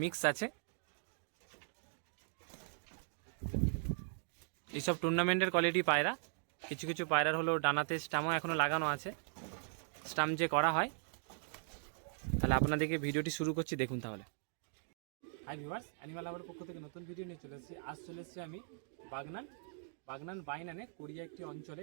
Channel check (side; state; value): left; silent; digital silence